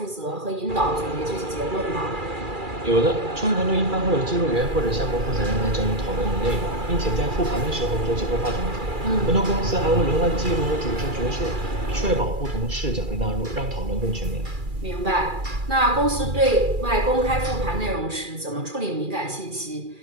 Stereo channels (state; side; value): late; left; 2.4 ms